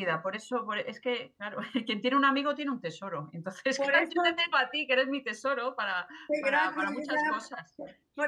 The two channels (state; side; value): identical; both; correlation 1.00